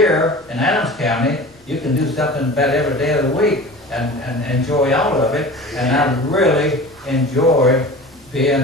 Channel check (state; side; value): noise; left; rumble, 29 dB below the sound